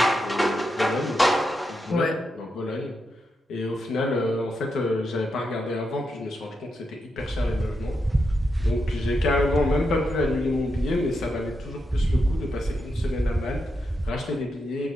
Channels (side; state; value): both; normal; correlation 0.85